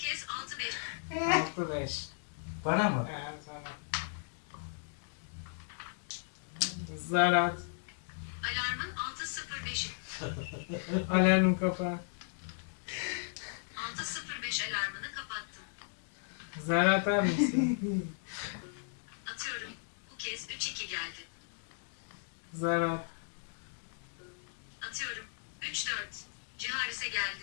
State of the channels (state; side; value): silent; right; digital silence